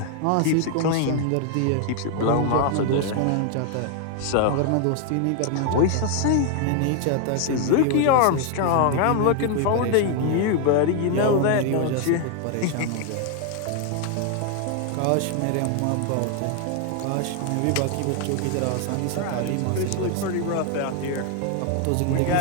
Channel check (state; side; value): different; both; correlation 0.00